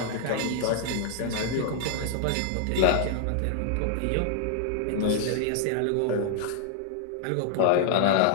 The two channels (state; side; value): different; both; correlation 0.00